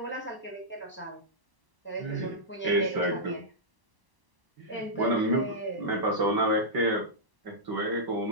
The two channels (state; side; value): late; left; 1.0 ms